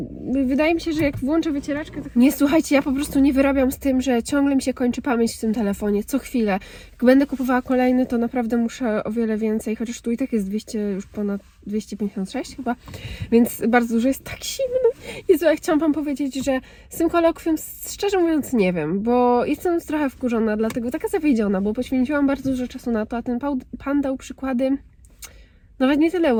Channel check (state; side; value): identical; both; correlation 1.00